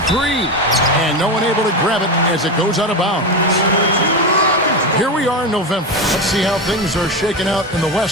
three, and no one able to grab it as it goes out of bounds. Here we are in November. Let's see how things are shaking out in the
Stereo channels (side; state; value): both; normal; correlation 0.17